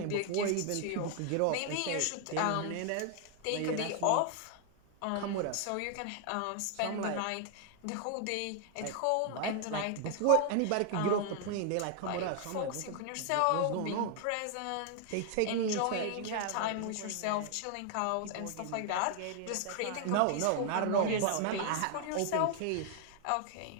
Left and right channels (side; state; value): both; different; correlation 0.00